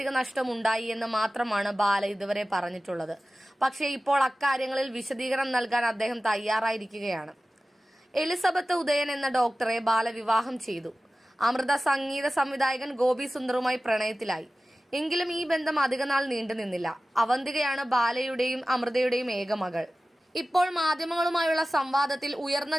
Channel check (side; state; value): both; normal; correlation 0.96